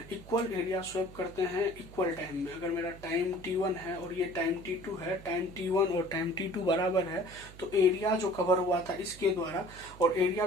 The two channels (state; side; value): noise; right; hum, 18 dB below the sound